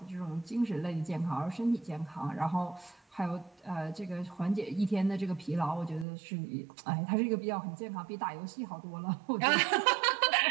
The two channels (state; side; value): drops out; left; at 6.1 s